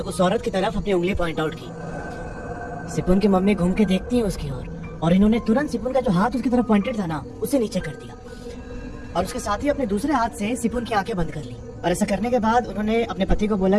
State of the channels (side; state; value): both; identical; correlation 1.00